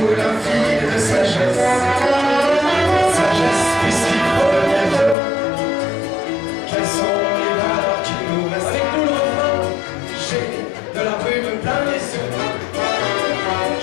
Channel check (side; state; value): right; drops out; at 5.2 s